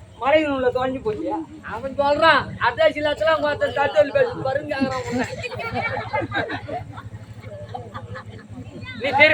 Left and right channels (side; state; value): both; identical; correlation 1.00